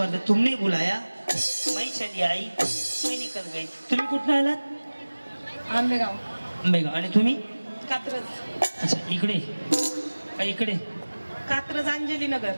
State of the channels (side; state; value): both; inverted; correlation -1.00